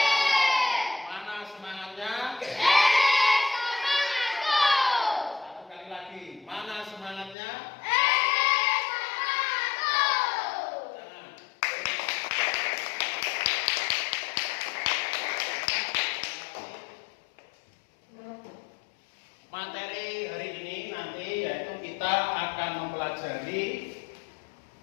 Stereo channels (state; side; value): drops out; right; at 7.4 s